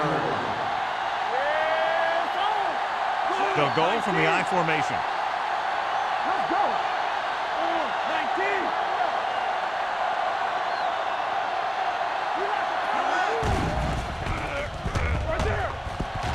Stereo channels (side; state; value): both; identical; correlation 1.00